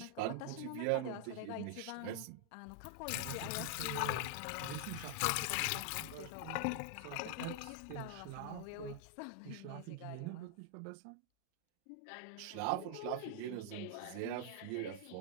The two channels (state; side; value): different; both; correlation 0.00